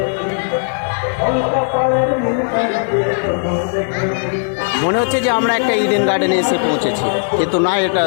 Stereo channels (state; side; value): silent; right; digital silence